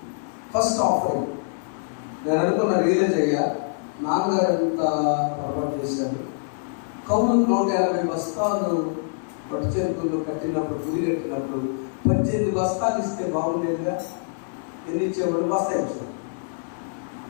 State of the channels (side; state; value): right; silent; digital silence